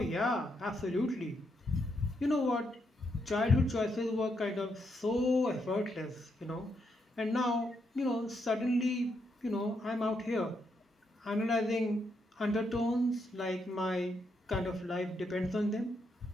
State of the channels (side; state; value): both; normal; correlation 0.79